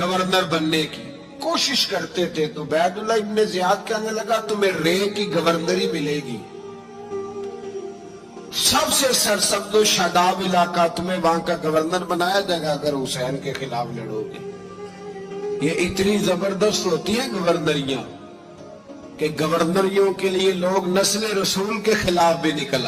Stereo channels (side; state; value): both; identical; correlation 1.00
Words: بننے کی، کوشش کرتے تھے۔ تو عبید اللہ ابن زیاد کہنے لگا تمہیں رے کی گورنری ملے گی، سب سے سرسبز و شاداب علاقہ، تمہیں وہاں کا گورنر بنایا جائے گا اگر حسین کے خلاف لڑو گے۔ یہ اتنی زبردست ہوتی ہیں گورنریاں کہ گورنریوں کے لیے لوگ نسل رسول کے خلاف بھی نکل